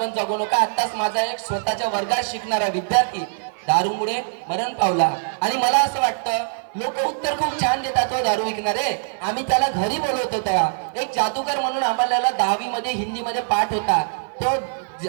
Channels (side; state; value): left; silent; 57 dB below the other